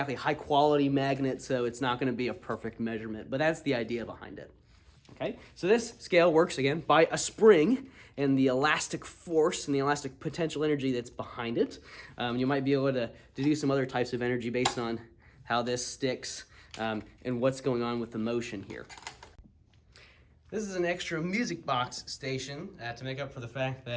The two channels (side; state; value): both; identical; correlation 1.00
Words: high quality magnet, so it's not going to be a perfect measurement, but that's the idea behind it. Okay, so this scale works again by a spring and the elastic force and the elastic potential energy that's behind it. You might be able to do some other types of energy based on how this sticks and what's going on with the motion here. This is an extra music box station to make up for the fact